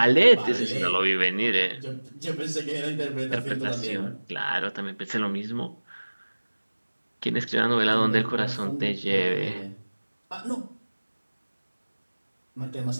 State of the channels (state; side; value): inverted; both; correlation -1.00